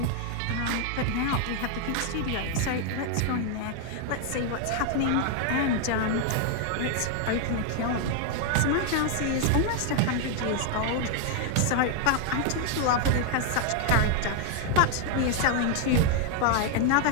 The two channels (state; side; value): different; both; correlation 0.00